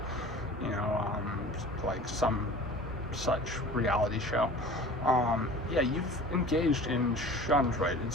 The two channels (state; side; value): normal; both; correlation 0.41